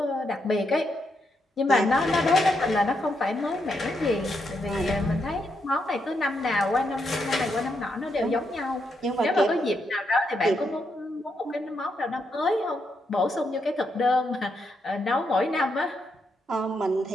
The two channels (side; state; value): both; normal; correlation 0.80